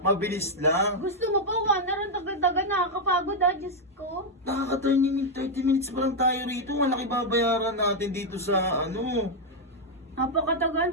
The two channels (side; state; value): both; normal; correlation 0.00